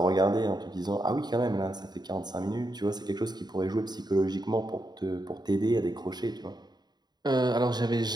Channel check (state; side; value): late; left; 0.20 ms